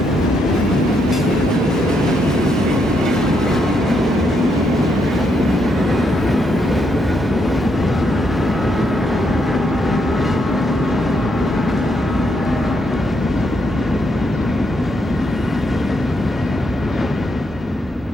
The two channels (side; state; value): both; normal; correlation 0.77